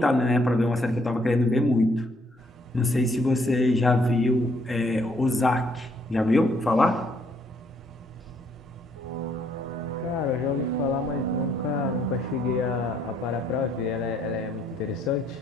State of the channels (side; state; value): both; normal; correlation 0.68